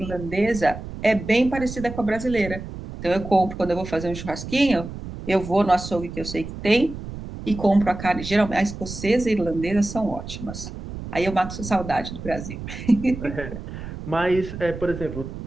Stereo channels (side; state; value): right; noise; rumble, 10 dB below the sound